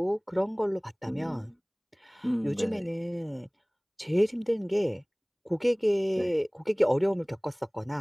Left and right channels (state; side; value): identical; both; correlation 1.00